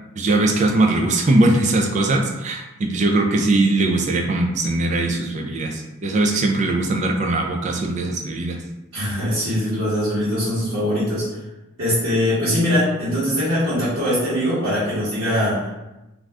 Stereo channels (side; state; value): both; normal; correlation 0.59